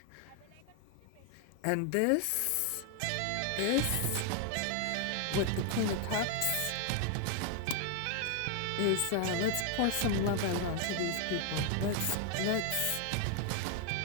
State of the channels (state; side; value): different; both; correlation 0.00